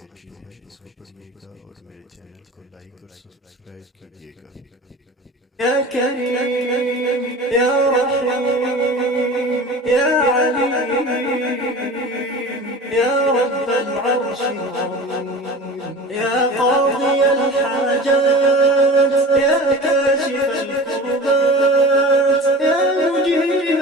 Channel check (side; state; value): both; normal; correlation 0.36